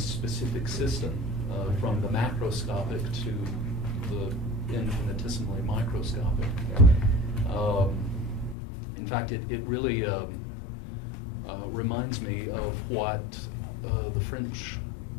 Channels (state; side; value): drops out; right; at 8.6 s